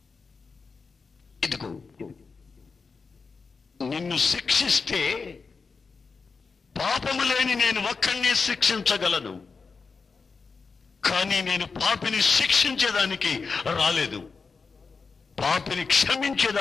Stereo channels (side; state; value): right; quieter; 4.8 dB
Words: ఇదిగో నిన్ను శిక్షిస్తే పాపము లేని నేను ఒక్కడినే శిక్షించగలను, కానీ నేను పాపిని శిక్షించేదానికి రాలేదు, పాపిని